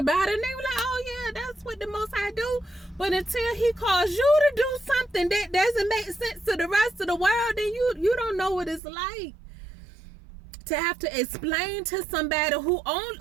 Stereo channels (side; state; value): left; drops out; at 8.8 s